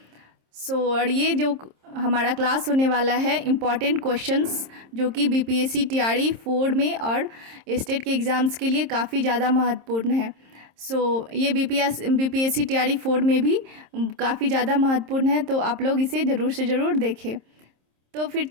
और ये जो हमारा क्लास होने वाला है इम्पॉर्टेंट क्वेश्चंस जो कि बीपीएससी टीआरई 4 में और स्टेट के एग्ज़ाम्स के लिए काफ़ी ज़्यादा महत्वपूर्ण है। ये बीपीएससी टीआरई 4 में भी काफ़ी ज़्यादा महत्वपूर्ण है, तो आप लोग इसे ज़रूर से ज़रूर देखें। तो फिर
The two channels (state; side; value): late; left; 26 ms